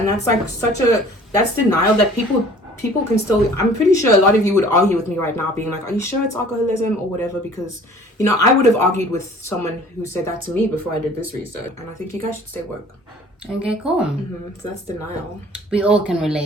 that's like that's denial that people can still, I'm pretty sure a lot of you would argue with me right now being like, are you sure it's alcoholism or whatever? Because, you know, I would have argued with someone who said that to me before I did this research. And I think you guys should stay woke. Okay, cool. So that's denial. We all can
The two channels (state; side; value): normal; both; correlation 0.50